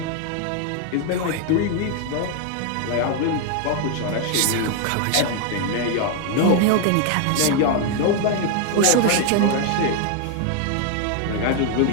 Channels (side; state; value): both; different; correlation 0.01